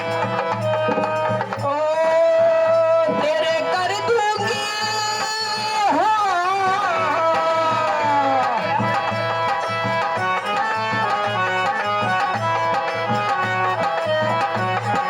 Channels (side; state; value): both; identical; correlation 1.00